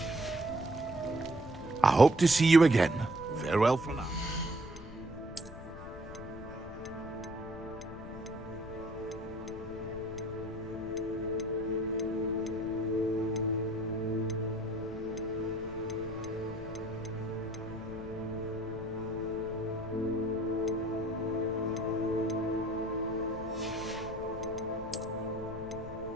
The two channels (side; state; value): left; noise; rumble, 13 dB below the sound